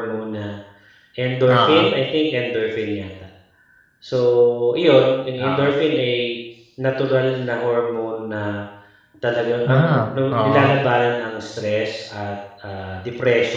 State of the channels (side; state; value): both; identical; correlation 1.00